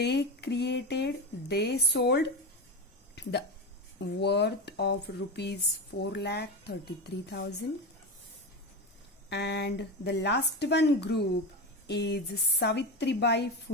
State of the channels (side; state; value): both; normal; correlation 0.19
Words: sold the worth of rupees 4,33,000. And the last one group is Savitribai